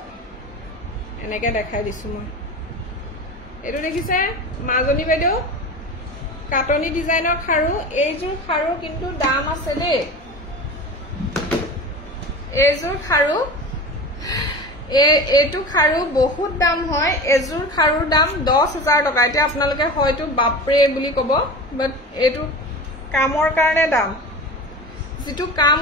এনেকে দেখাই দিছো মই এটো দেখিছে মাজনী বাইদেউ কাটনি ডিজাইনৰ খাৰু এইজোৰ খাৰু কিন্তু দাম আছে দেই এইজোৰ খাৰু এটো খাৰু বহুত দাম হয় এজোৰ খাৰুৰ দাম 10,000 টকা এটা আপোনালোকে হয়তো বাপৰে বুলি কব বাট এটো কামৰ কাৰণে দাম যেটো কাম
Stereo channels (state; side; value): normal; both; correlation 0.31